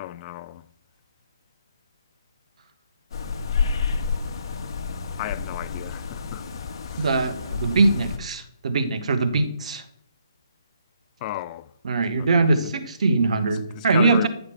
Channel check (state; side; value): inverted; both; correlation -0.73